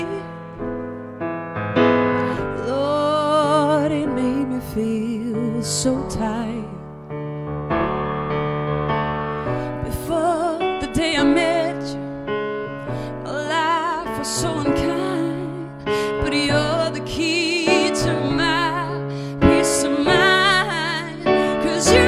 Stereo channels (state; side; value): identical; both; correlation 1.00